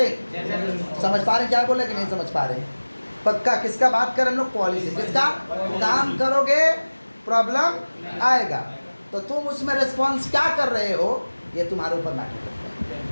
हैं? समझ पा रहे क्या बोले कि नहीं समझ पा रहे? पक्का किसका बात करें हम लोग? पॉलिसी। किसका? काम करोगे प्रॉब्लम आएगा, तो तुम उसमें रिस्पॉन्स क्या कर रहे हो ये तुम्हारे ऊपर मैटर करता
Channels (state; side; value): inverted; both; correlation -1.00